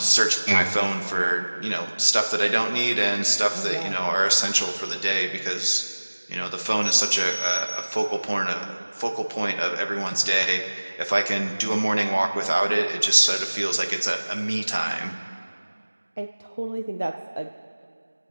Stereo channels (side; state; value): both; inverted; correlation -1.00